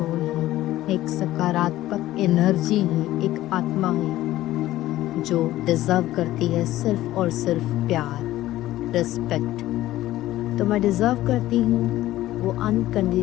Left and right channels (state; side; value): quieter; right; 15.1 dB